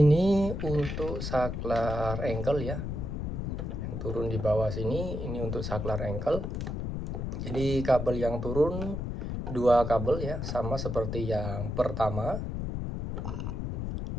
untuk saklar ankle ya, yang turun di bawah sini, ini untuk saklar ankle. Jadi kabel yang turun 2 kabel ya, sama seperti yang pertama.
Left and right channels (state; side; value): noise; left; rumble, 3 dB below the sound